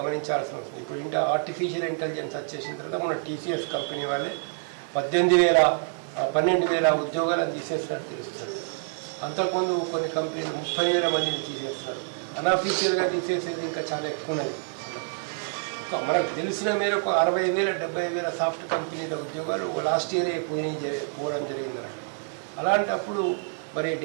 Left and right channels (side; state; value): left; silent; digital silence